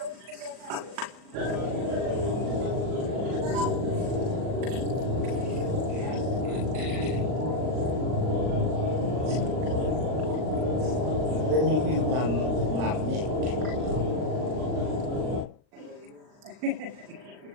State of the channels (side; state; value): left; late; 39 ms